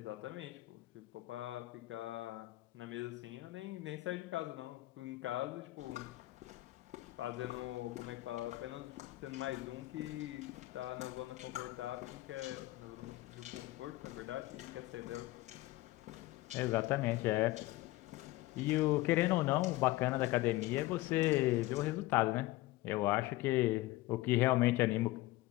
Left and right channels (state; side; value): quieter; right; 18.5 dB